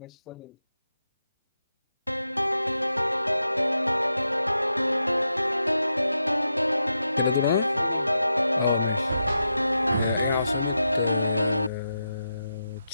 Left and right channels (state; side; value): inverted; both; correlation -0.87